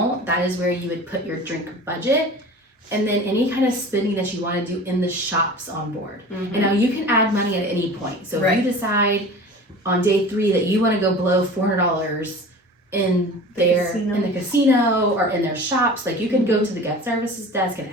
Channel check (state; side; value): normal; both; correlation 0.38